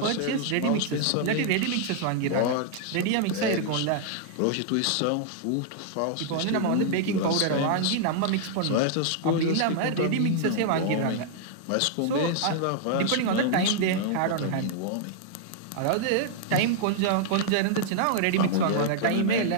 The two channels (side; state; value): both; different; correlation -0.01